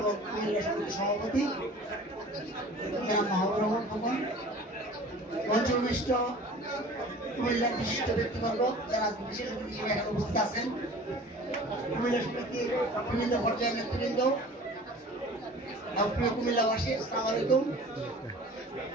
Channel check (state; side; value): normal; both; correlation 0.44